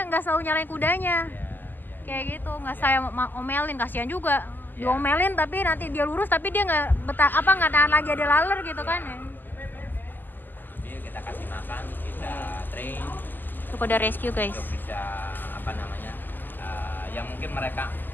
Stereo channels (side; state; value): right; late; 0.089 ms